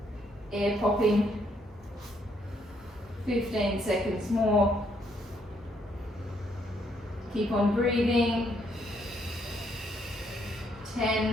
air popping. 15 seconds more. Keep on breathing.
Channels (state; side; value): normal; both; correlation 0.72